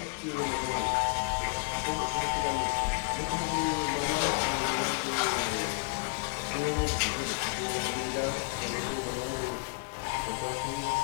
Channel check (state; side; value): quieter; right; 32.1 dB